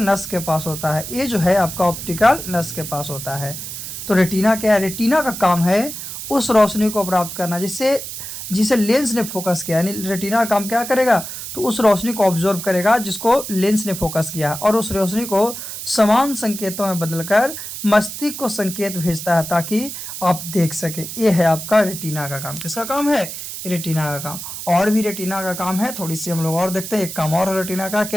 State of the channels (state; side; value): noise; right; hiss, 8 dB below the sound